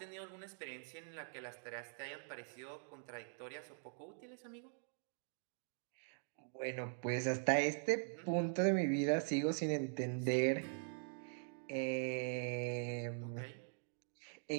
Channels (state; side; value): silent; left; digital silence